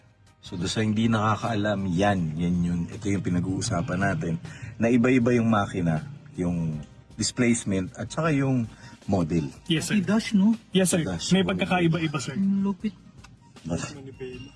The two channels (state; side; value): identical; both; correlation 1.00